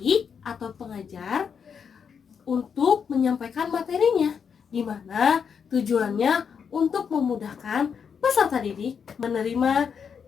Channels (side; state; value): right; quieter; 6.8 dB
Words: atau pengajar untuk menyampaikan materinya, di mana tujuannya untuk memudahkan peserta didik menerima